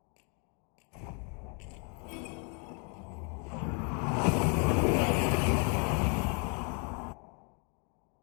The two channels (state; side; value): quieter; right; 37.2 dB